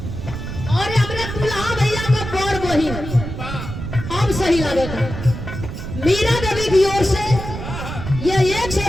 और हमारे दुल्हा भैया का बड़ बहिन अब सही लगे था, मीरा देवी की ओर से ये 100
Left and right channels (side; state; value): right; noise; rumble, 7 dB below the sound